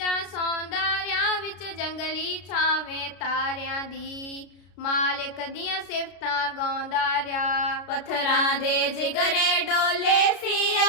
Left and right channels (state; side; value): late; right; 33 ms